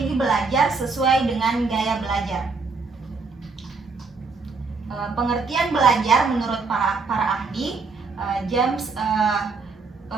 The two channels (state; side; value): quieter; left; 4.4 dB